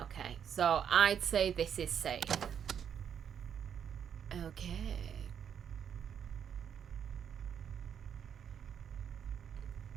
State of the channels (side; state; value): left; quieter; 8.2 dB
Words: so I'd say this is safe. Okay.